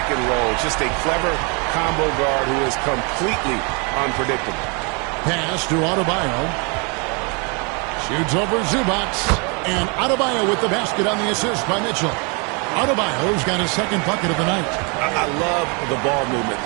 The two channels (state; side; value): quieter; left; 33.2 dB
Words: and roll. Just a clever combo guard who is completely unpredictable. Pass to Adebayo. Shoots over Zubac. And Adebayo with the basket on the assist by Mitchell. Adebayo's got his second bucket of the night. I love the ball movement